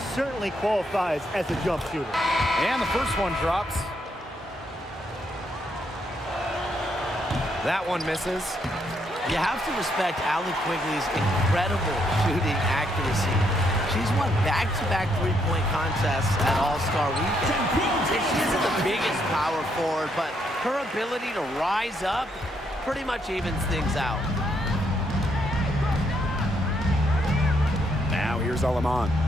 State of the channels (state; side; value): normal; both; correlation 0.75